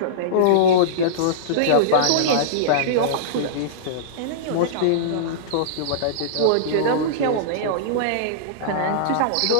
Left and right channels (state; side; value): different; both; correlation -0.03